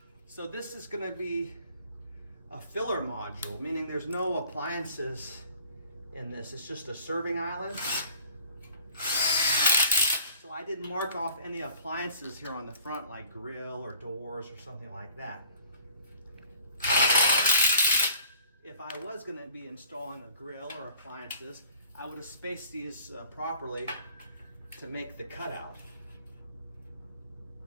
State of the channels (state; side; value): inverted; both; correlation -0.52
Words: So this is going to be a filler module, meaning there's no appliances in this. It's just a serving island. So I didn't mark off any appliances here on the front, like grill or doors or something like that. If I was going to be installing a grill or appliances, I would have spaced these properly to make the cutout.